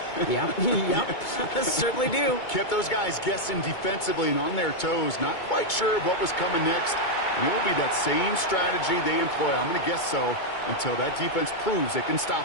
Yeah, yep, certainly do. Kept those guys guessing defensively and on their toes, not quite sure of what was coming next. And it will be that same strategy they employ, I'm going to guess so, until that defense proves they can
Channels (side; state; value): right; late; 2.2 ms